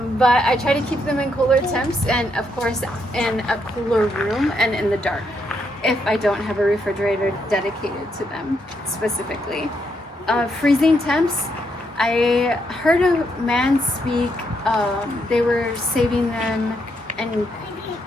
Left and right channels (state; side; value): normal; both; correlation 0.77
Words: I try to keep them in cooler temps, and of course in a cooler room and in the dark if I don't have a refrigerator dedicated to them specifically. Freezing temps, I heard a man speak, they were saving them in